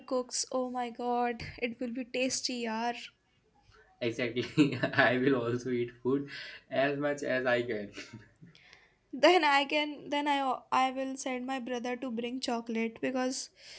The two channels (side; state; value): both; identical; correlation 1.00